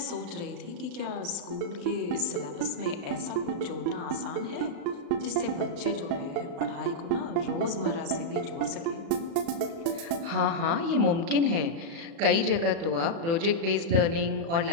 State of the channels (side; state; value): left; late; 36 ms